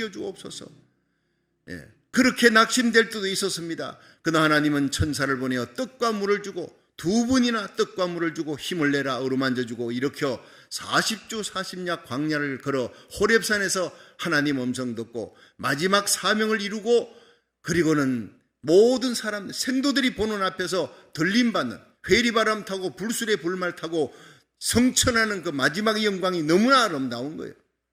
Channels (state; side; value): identical; both; correlation 1.00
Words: 그렇게 낙심될 때도 있었습니다. 그러나 하나님은 천사를 보내어 떡과 물을 주고 2분이나 떡과 물을 주고 힘을 내라 어루만져 주고 일으켜 40주 40야 광야를 걸어 호렙산에서 하나님 음성 듣고 마지막 사명을 이루고 그리고는 모든 사람 생도들이 보는 앞에서 들림받는 회리바람 타고 불술의 불말 타고 성천하는 그 마지막의 영광이 너무나 아름다운 거예요.